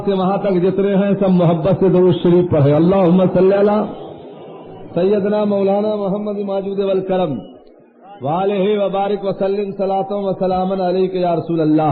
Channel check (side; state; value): both; identical; correlation 1.00